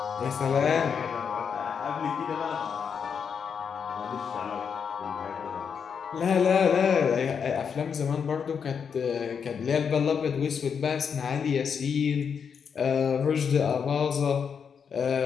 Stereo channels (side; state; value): right; quieter; 6.7 dB